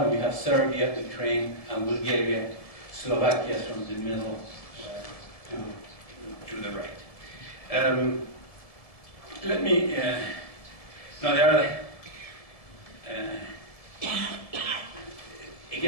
you have Serbia, Ukraine, and Bulgaria, Slovakia from the middle to the right. Let me, now there are,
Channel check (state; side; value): late; right; 1.7 ms